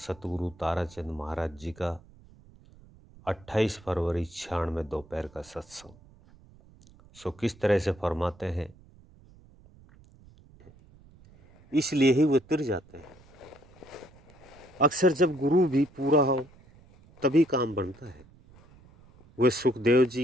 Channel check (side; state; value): right; noise; rumble, 25 dB below the sound